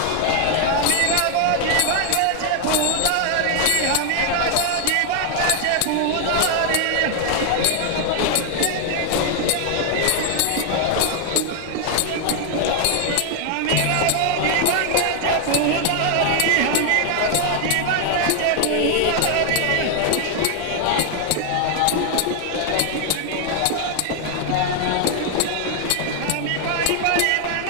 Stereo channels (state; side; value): different; both; correlation 0.00